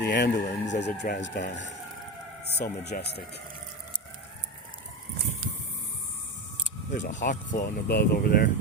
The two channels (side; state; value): both; normal; correlation 0.20